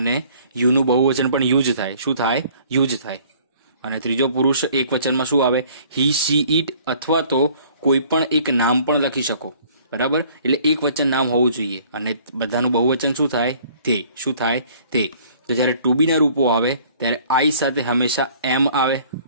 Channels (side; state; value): both; inverted; correlation -0.55